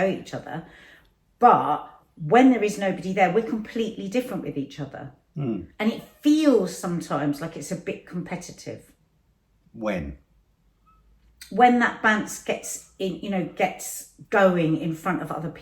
at each other. But when there is nobody there, we're completely different with each other. And it feels sometimes like it's a bit competitive. When that bounce gets going in front of other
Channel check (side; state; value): both; identical; correlation 1.00